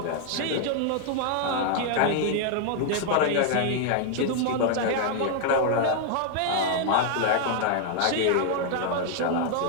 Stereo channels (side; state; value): both; different; correlation 0.00